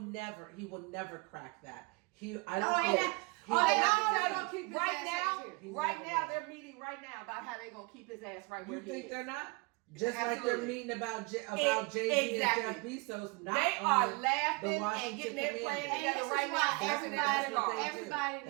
will never crack that. I No, don't and think. they're going to keep his right ass now, out here. right now, they're meeting right now about how they're going to keep his ass right where You he think is. they're not? Just like they're Absolutely. meeting about Jay-Z Exactly. and Jeff Bezos. Not They on are the laughing and Washington getting their plan Commanders. And this together is right why now. That's Everybody's what they do. everybody needs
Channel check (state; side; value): quieter; left; 28.3 dB